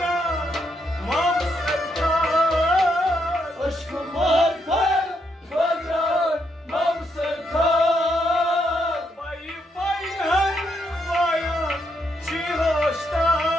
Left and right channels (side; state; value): both; normal; correlation 0.78